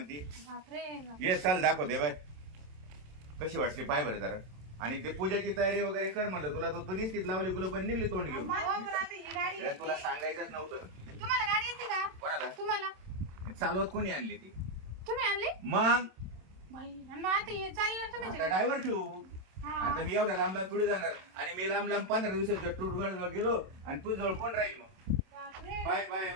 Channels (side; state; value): left; late; 27 ms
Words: बापरे. ये चल दाखवते बाय, कशी वाटली पाय बरं जरा. आणि ते पूजाची तयारी वगैरे कर म्हणलं तुला, तर तू निश्चित लावली गुलो पण निघली तोंड घेऊन. हो, पण आता ही गाडी अरे तुला येते. सांगायचंच नव्हतं. तुम्हाला गाडी येते का? कोणाला? तुम्हाला. चालवत कोणी आणली ती? तुम्ही आणली? मग बाई, आणि मग आता हे चालणार तुम्ही आता ड्रायव्हर ठेवू. हा. आता मी एवढ्या लांब लांब पुढे जाणार आणि मी लांब लांब 15 दिवसाच्या टूर गेलो आणि तू जवळ कोण राहील मग? बापरे. Bye bye